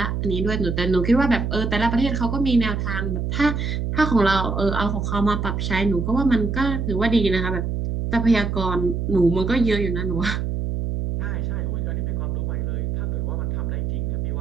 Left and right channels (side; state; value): right; noise; hum, 1 dB below the sound